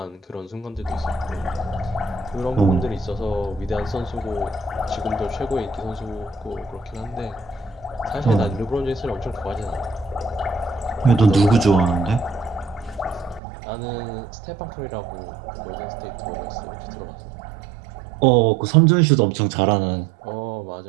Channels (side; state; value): left; drops out; at 13.4 s